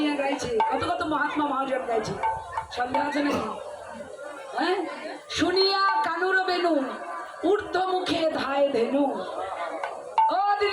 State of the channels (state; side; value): identical; both; correlation 1.00